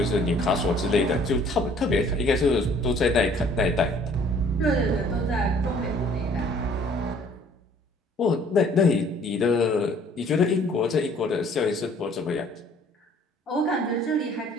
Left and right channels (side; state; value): both; normal; correlation 0.57